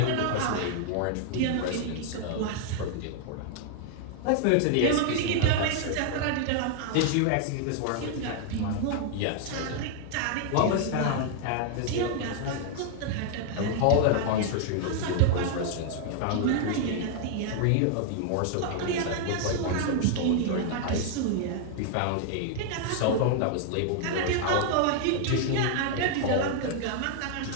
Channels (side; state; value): both; different; correlation 0.00